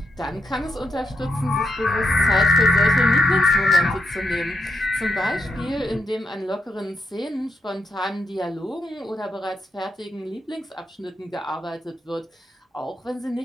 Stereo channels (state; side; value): normal; both; correlation 0.81